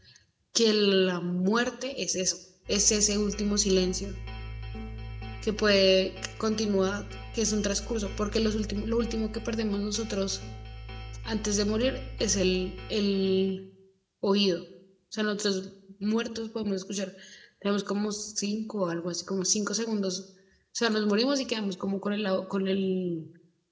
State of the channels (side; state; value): both; identical; correlation 1.00